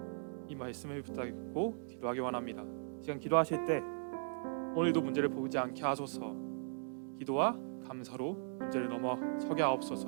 이 말씀을 붙잡고 기도하기 원합니다. 시간 기도하실 때 오늘도 문제를 보지 않게 하소서. 기도와 감사로 문제를 넘어서게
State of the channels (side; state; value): left; silent; digital silence